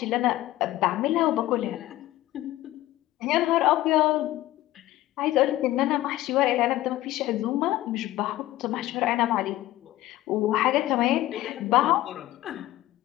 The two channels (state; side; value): quieter; right; 15.8 dB